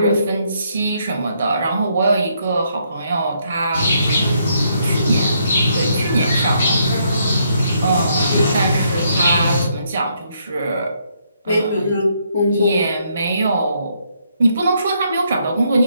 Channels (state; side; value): inverted; both; correlation -0.73